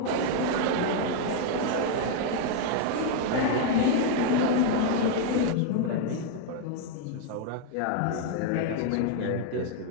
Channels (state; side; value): different; both; correlation 0.00